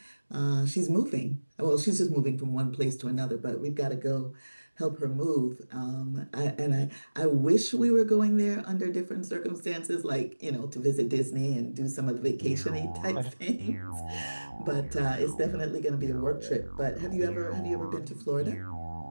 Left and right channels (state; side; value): inverted; both; correlation -1.00